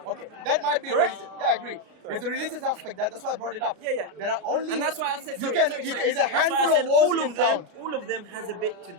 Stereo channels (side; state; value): left; late; 33 ms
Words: Okay, that might be Correct? religious. Yeah, I agree. There's a religious aspect. That's why I brought it up. Yeah. There are only. And that's why I said, you sorry, can. sorry, you sorry. Can, it's a That's why I handful said of wars all you of can them. count. All of them has a bit to